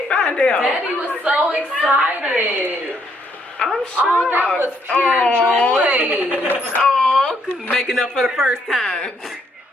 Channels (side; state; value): both; normal; correlation 0.72